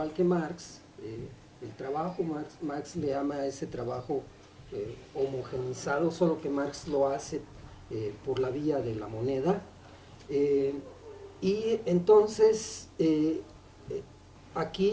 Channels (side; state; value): both; identical; correlation 1.00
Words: que Marx, el trabajo. Marx le llama a ese trabajo homogenizado, solo que Marx lo hace por la vía de la moneda. Y entonces